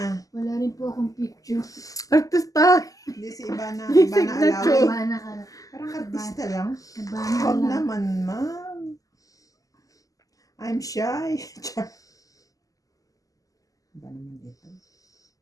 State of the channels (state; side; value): late; right; 0.17 ms